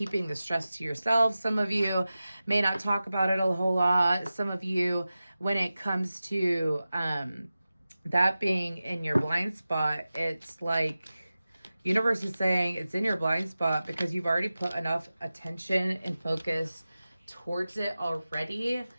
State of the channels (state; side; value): inverted; both; correlation -0.95